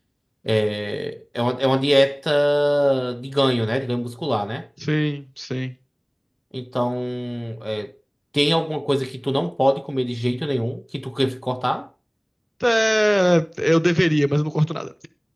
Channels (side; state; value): both; identical; correlation 1.00